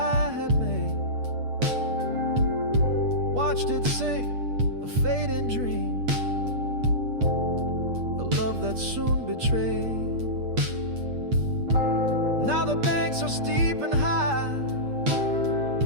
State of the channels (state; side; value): late; left; 8.4 ms